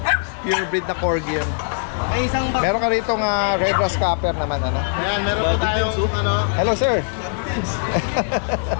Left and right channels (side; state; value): right; silent; 65 dB below the other